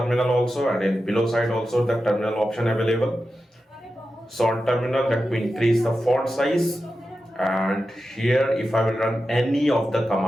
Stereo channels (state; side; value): normal; both; correlation 0.91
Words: also, and in below side also the terminal option available. So on terminal, let me increase the font size, and here if I will run any of the